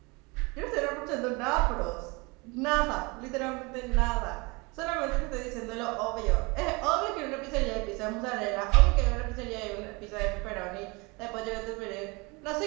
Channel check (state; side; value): quieter; left; 27.0 dB